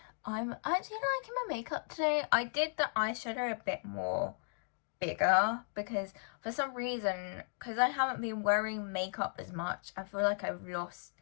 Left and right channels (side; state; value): right; silent; digital silence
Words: I'm actually liking my makeup today. I did the eyeshadow a bit more bigger because for some reason, because I haven't been wearing makeup as much, I feel like I've lost